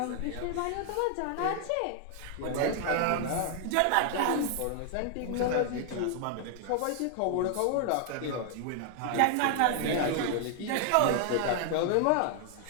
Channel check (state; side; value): different; both; correlation 0.00